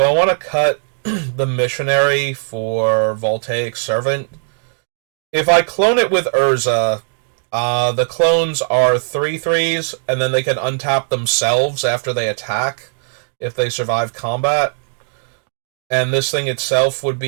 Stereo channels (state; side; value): silent; left; digital silence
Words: I want to cut the Missionary for Voltaic Servant? If I clone it with Urza, The clones are 3/3s, and then they can untap themselves after they attack if they survive combat. And this thing itself would